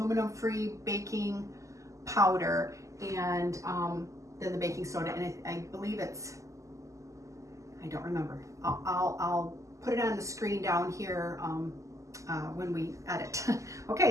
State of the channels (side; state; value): left; late; 0.16 ms